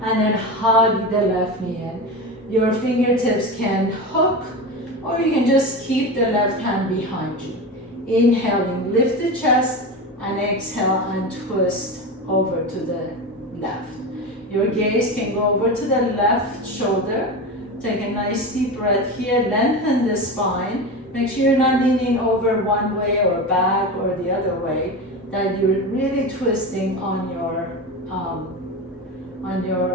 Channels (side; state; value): both; normal; correlation 0.23